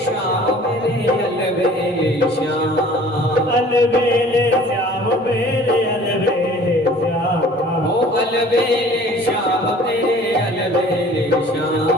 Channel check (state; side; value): normal; both; correlation 0.50